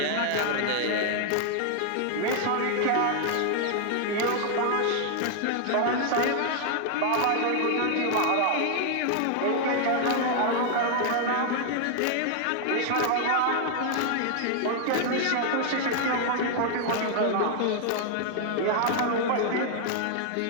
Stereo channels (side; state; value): both; different; correlation 0.00